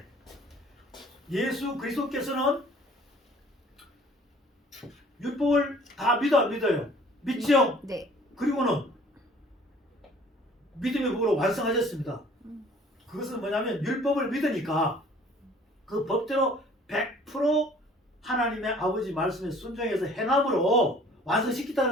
예수 그리스도께서는 율법을 다 믿어 안 믿어요? 믿죠? 네. 그리고는 믿음의 법으로 완성하셨습니다. 그것은 뭐냐면 율법을 믿으니까 그 법대로 100% 하나님의 아버지 말씀에 순종해서 행함으로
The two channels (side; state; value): both; normal; correlation 0.53